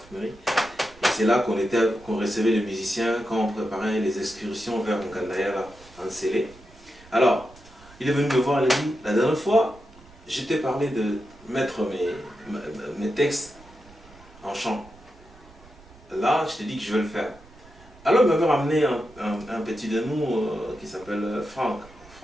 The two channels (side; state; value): right; noise; rumble, 23 dB below the sound